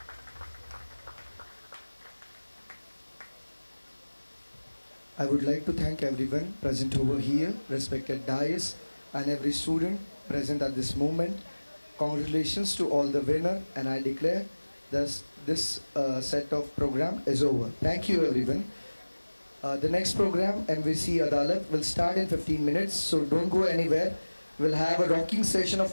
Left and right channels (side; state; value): both; inverted; correlation -1.00